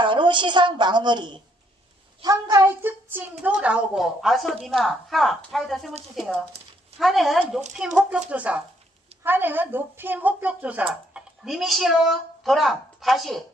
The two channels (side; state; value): both; normal; correlation 0.70